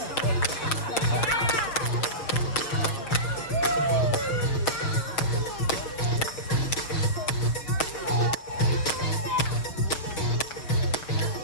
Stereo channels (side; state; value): right; late; 6.7 ms